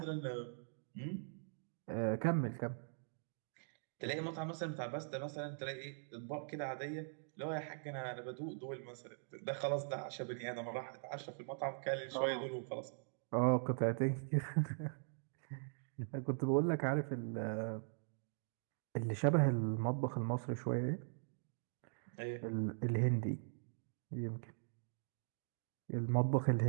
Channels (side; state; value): left; silent; digital silence